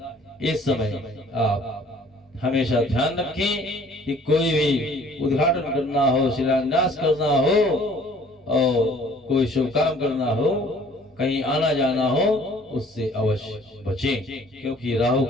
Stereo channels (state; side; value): normal; both; correlation 0.55